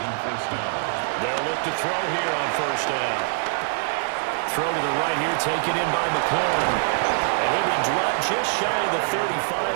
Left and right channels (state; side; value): silent; left; 63 dB below the other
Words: first down. They'll look to throw here on first down. Throw to the right here, taken in by McLaurin. And he'll be dropped just shy of the 35